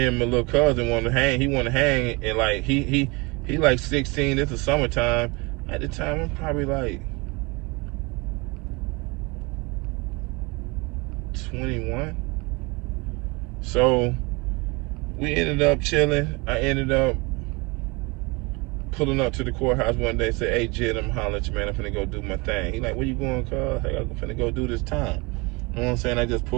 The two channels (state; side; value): quieter; left; 26.4 dB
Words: and my little cousin wanted to hang. He wanted to hang, and like he like 16. It's the summertime. At the time, I'm probably like 21. So we ended up chilling. I ended up pulling up to the courthouse one day and said, hey, Jid, I'm hollering at you, man. I'm finna go do my thing. He like, where you going, cuz? Hey, I'm finna go do this time. You know what I'm saying? I just